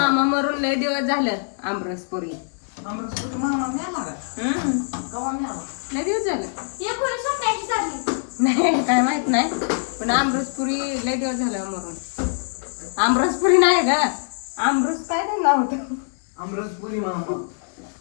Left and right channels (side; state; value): right; silent; digital silence